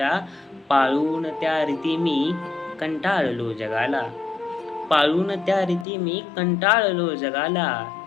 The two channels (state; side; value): drops out; right; at 5.9 s